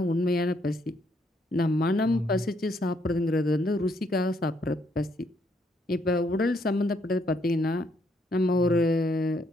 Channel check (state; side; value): normal; both; correlation 0.72